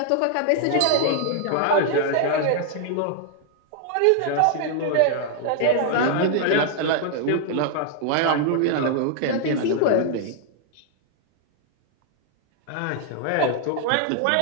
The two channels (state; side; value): different; both; correlation 0.00